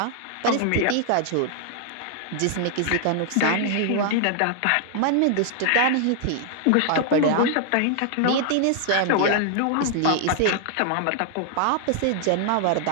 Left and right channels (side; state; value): both; different; correlation 0.00